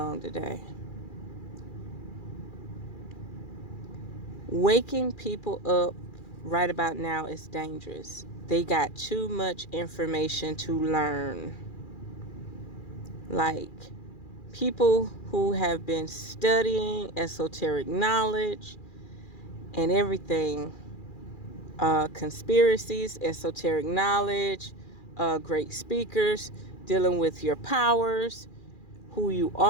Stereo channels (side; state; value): right; late; 2.4 ms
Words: today? Waking people up right about now is dangerous. They got too much information to learn. Like people who have been studying esoteric knowledge and everything, conspiracies, esoteric knowledge, great speakers, dealing with your powers, who you